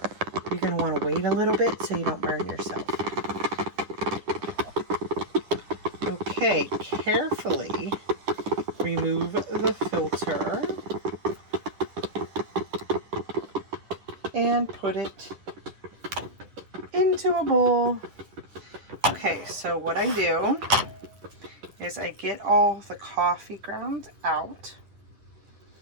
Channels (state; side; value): late; left; 9.9 ms